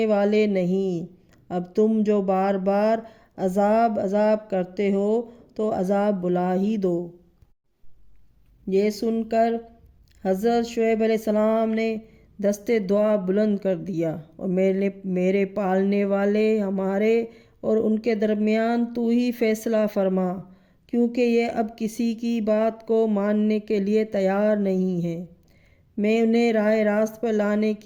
والے نہیں۔ اب تم جو بار بار عذاب کرتے ہو تو عذاب بلا ہی دو۔ یہ سن کر حضرت شعیب علیہ السلام نے دستے دعا بلند کر دیا، اور میرے پالنے والے، ہمارے اور ان کے درمیان تو ہی فیصلہ فرما، کیونکہ یہ اب کسی کی بات کو ماننے کے لیے تیار نہیں ہے۔ میں انہیں راہ راست پر لانے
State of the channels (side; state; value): both; identical; correlation 1.00